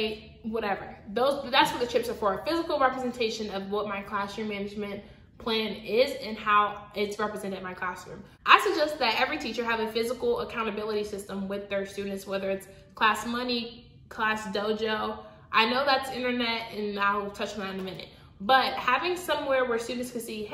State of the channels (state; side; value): identical; both; correlation 1.00